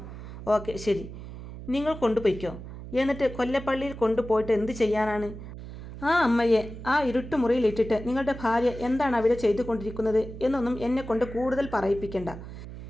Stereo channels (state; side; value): noise; right; hum, 12 dB below the sound